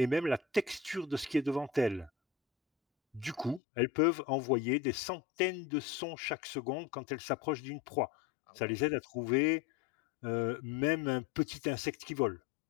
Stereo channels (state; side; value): drops out; right; at 3.6 s